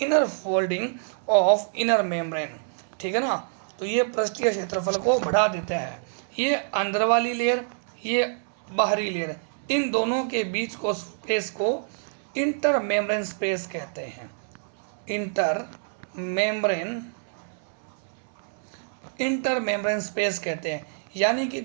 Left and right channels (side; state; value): left; silent; 61 dB below the other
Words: folding of inner membrane. ठीक है ना, तो ये पृष्ठीय क्षेत्रफल को बढ़ा देते हैं। ये अंदर वाली लेयर, ये बाहरी लेयर, इन दोनों के बीच को स्पेस को इंटर मेम्ब्रेन स्पेस कहते हैं। इंटर मेम्ब्रेन स्पेस कहते हैं, यानी कि